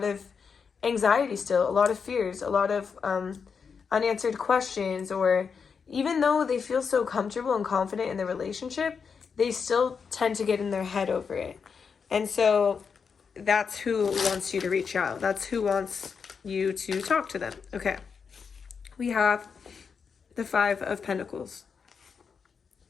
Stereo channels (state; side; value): quieter; right; 6.0 dB